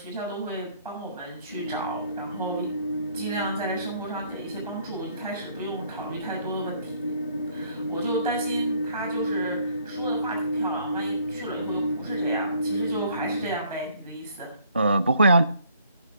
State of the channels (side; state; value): both; inverted; correlation -0.63